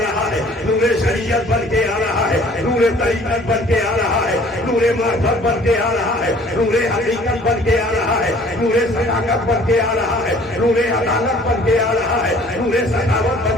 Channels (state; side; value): normal; both; correlation 0.53